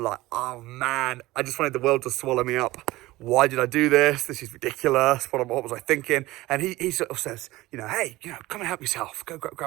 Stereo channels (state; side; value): quieter; left; 18.4 dB